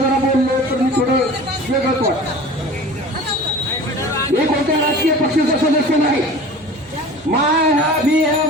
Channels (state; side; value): normal; both; correlation 0.40